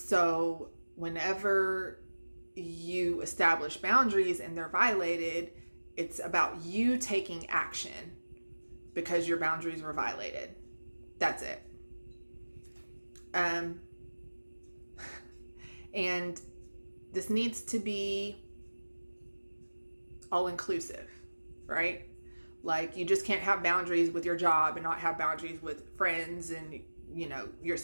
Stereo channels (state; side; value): inverted; both; correlation -1.00